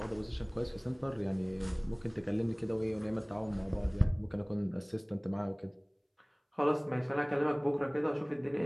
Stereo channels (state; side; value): identical; both; correlation 1.00